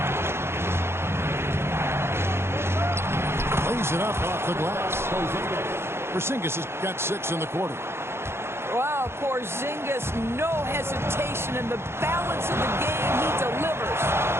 Lays it up off the glass. Porzingis has got 6 in the quarter. Wow, Porzingis, no hesitation in the balance of the game. He delivers.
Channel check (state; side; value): late; left; 0.12 ms